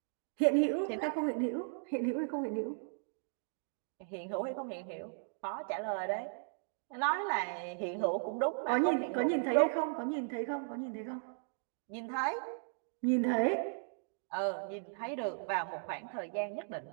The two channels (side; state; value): left; silent; digital silence